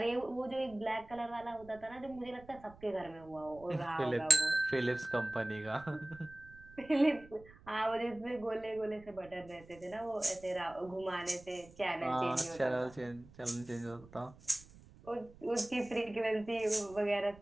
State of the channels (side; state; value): right; noise; rumble, 22 dB below the sound